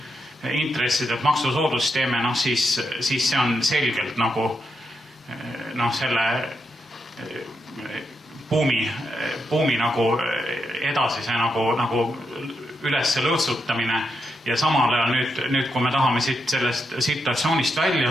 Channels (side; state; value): both; normal; correlation 0.82